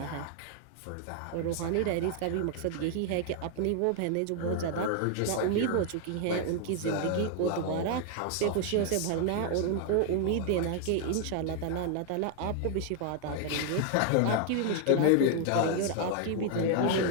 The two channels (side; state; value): both; different; correlation 0.00